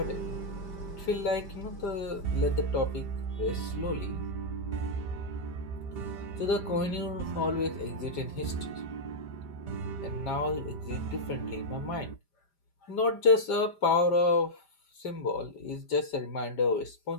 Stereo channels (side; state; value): right; late; 5.0 ms